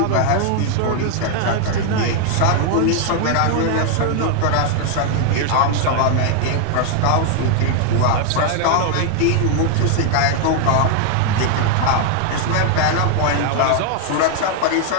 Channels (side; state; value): both; different; correlation 0.00